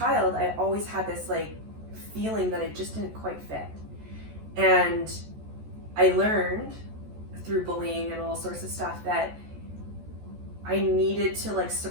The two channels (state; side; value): late; left; 14 ms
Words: I always had this like feeling that I just didn't quite fit. And I learned through bullying and all sorts of stuff that I needed to like